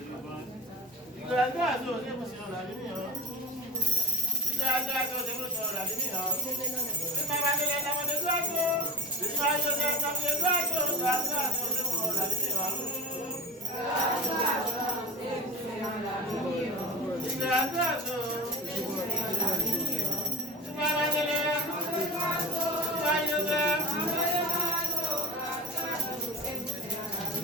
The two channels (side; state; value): both; normal; correlation 0.32